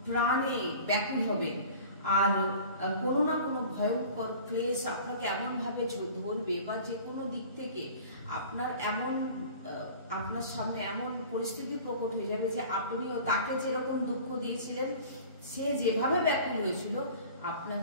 প্রাণে ব্যাকুল হবেন, আর কোনো না কোনো ভয়ঙ্কর ক্লেশ আপনাকে এমন ভাবে ধরবে, বা যে কোনো দিক থেকে আপনার সামনে এমন পরিস্থিতি প্রকট হয়ে যাবে যে আপনিও তাকে যেরকম দুঃখ দিয়েছিলেন, সে যেভাবে ব্যাকুল হয়েছিল,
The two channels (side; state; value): both; inverted; correlation -0.43